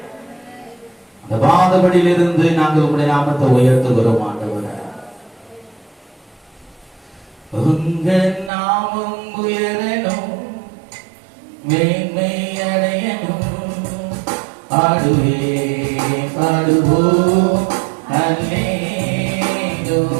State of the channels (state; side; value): drops out; left; at 8.5 s